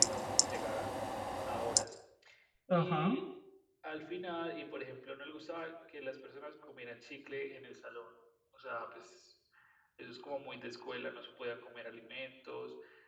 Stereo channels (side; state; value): both; identical; correlation 1.00